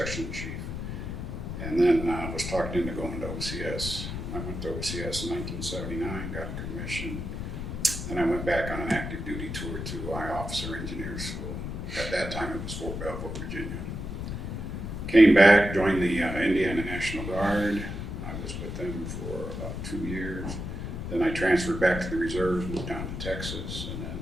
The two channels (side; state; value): left; noise; rumble, 5 dB below the sound